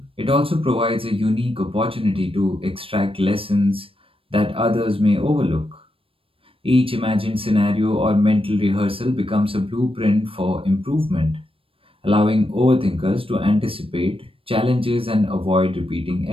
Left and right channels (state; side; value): late; left; 0.27 ms